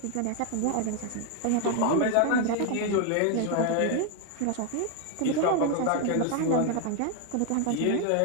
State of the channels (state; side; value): different; both; correlation 0.01